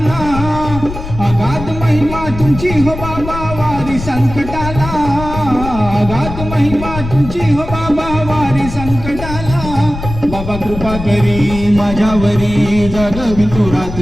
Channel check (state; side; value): noise; left; rumble, 9 dB below the sound